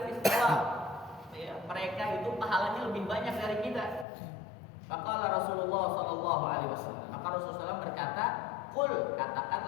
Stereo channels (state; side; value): drops out; right; at 4.0 s